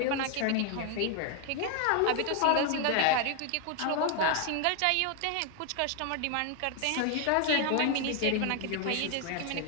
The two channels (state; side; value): different; both; correlation 0.00